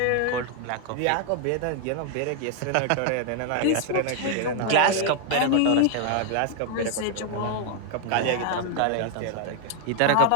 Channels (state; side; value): different; both; correlation 0.00